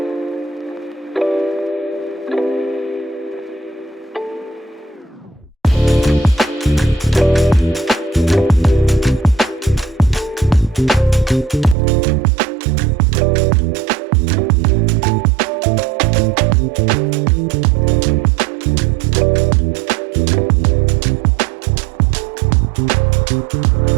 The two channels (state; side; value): drops out; left; at 11.8 s